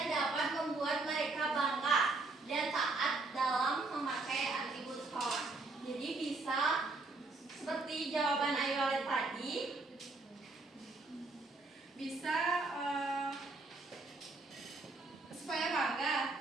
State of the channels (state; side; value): quieter; left; 3.4 dB